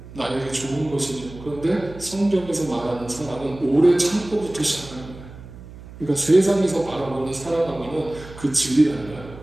나에게 좋은 것이죠. 그런데 성경에서 말하는 사랑은 오래 참고부터 시작하는 거예요. 그러니까 세상에서 바라보는 사랑하고는 그 질이 달라요.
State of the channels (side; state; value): right; noise; hum, 16 dB below the sound